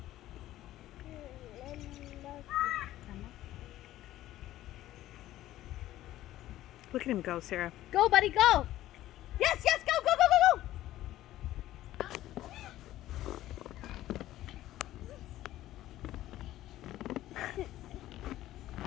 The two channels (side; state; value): right; quieter; 14.4 dB